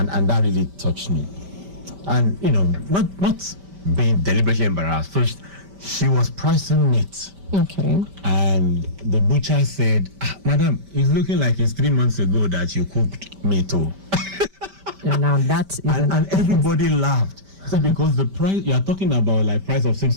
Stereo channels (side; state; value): left; late; 5.1 ms